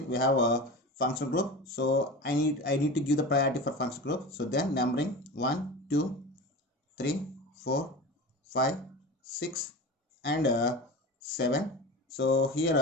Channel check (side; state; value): both; normal; correlation 0.30